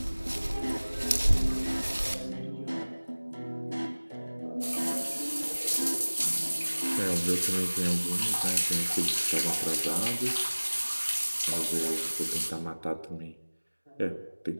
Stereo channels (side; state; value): both; inverted; correlation -1.00